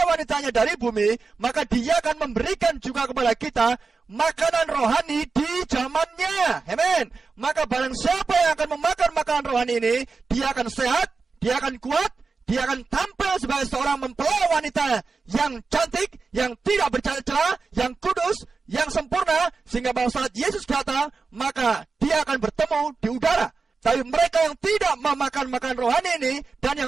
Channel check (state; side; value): quieter; left; 4.5 dB